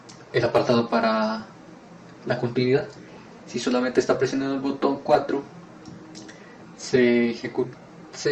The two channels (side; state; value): both; identical; correlation 1.00